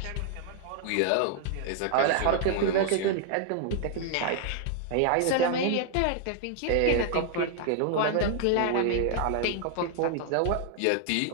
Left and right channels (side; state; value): both; different; correlation 0.00